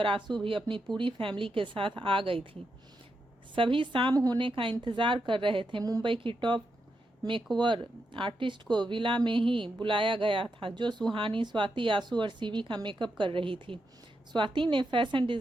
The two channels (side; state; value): both; normal; correlation 0.84